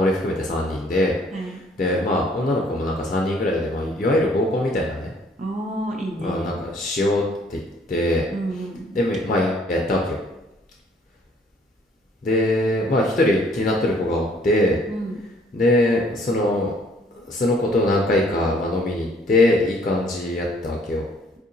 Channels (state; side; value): normal; both; correlation 0.61